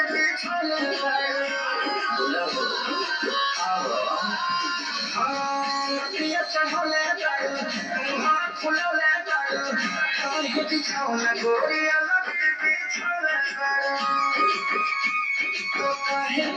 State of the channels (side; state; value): both; identical; correlation 1.00